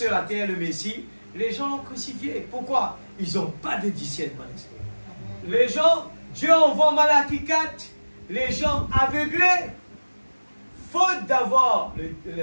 la terre, le Messie. Les gens l'ont crucifié. Pourquoi? Ils n'ont pas de discernement d'esprit. Les gens, Dieu envoie Malachie 4, les gens aveuglés, faute d'avoir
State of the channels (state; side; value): inverted; both; correlation -1.00